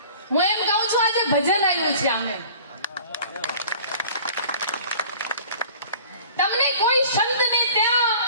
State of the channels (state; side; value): inverted; both; correlation -0.47